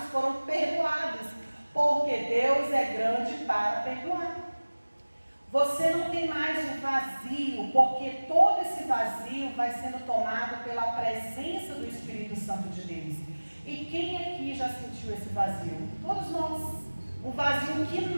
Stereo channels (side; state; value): both; inverted; correlation -1.00